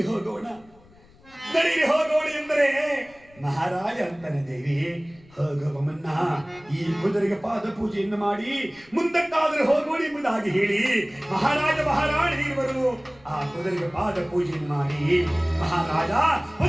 ಹೋಗೋಣ, ನಡೀರಿ ಹೋಗೋಣ ಎಂದರೆ ಮಹಾರಾಜ ಅಂತಾನೆ, ದೇವಿ ಹೋಗುವ ಮುನ್ನ ಈ ಕುದುರೆಗೆ ಪಾದ ಪೂಜೆಯನ್ನು ಮಾಡಿ ಮುಂದಕ್ಕಾದರೂ ಹೋಗೋಣ ಎಂಬುದಾಗಿ ಹೇಳಿ ಮಹಾರಾಜ ಮಹಾರಾಣಿ ಇರುವರು ಆ ಕುದುರೆಗೆ ಪಾದ ಪೂಜೆಯನ್ನು ಮಾಡಿ ಮಹಾರಾಜ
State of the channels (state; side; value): noise; left; rumble, 27 dB below the sound